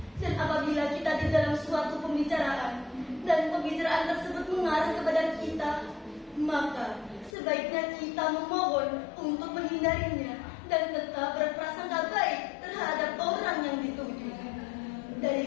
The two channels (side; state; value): right; drops out; at 7.3 s